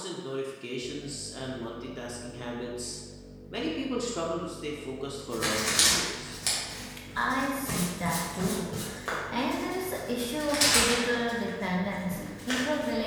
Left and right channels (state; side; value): identical; both; correlation 1.00